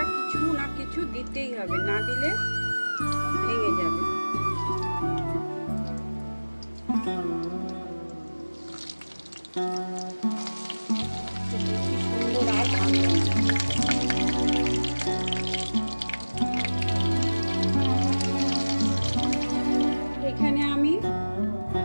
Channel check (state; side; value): inverted; both; correlation -1.00